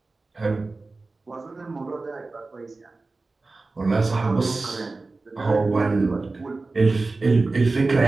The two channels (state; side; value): quieter; left; 3.5 dB